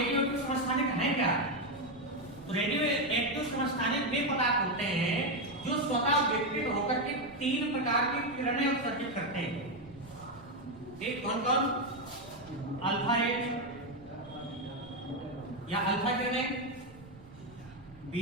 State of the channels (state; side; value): noise; right; rumble, 22 dB below the sound